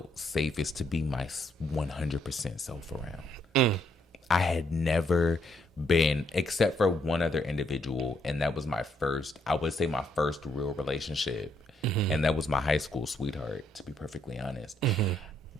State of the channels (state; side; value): normal; both; correlation 0.73